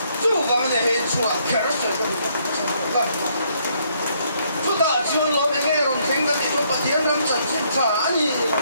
chu ga ma de he chu a kar so ga 주다 전 lo be ngai ron kheng ga ni lo pa tian ram chan chin cha ani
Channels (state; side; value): inverted; both; correlation -0.70